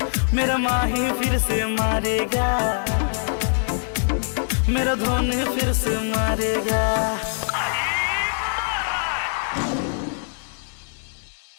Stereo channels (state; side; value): silent; right; digital silence